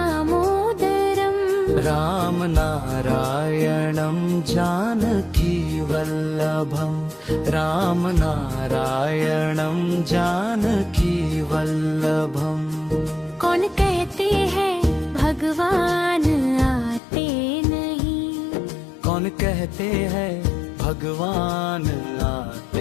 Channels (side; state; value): right; drops out; at 17.0 s